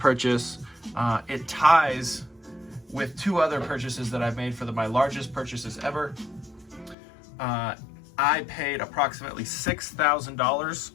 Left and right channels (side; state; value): right; drops out; at 7.0 s